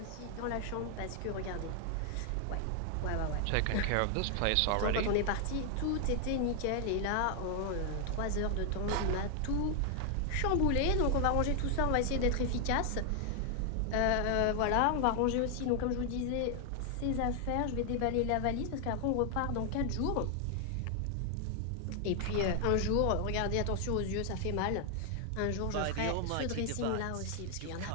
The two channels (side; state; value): both; different; correlation 0.00